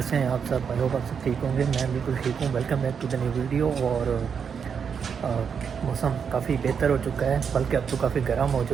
हैं आप सब। आई होप आप सब ठीक होंगे। मैं बिल्कुल ठीक हूँ। Welcome back to the new video. और मौसम काफ़ी बेहतर हो चुका है, बल्कि अब तो काफ़ी गर्म हो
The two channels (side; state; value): left; quieter; 6.7 dB